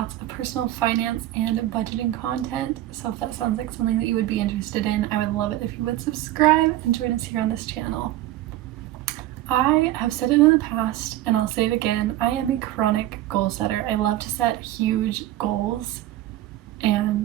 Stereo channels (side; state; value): left; quieter; 14.7 dB